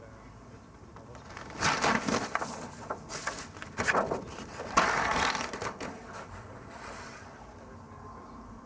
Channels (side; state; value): both; identical; correlation 1.00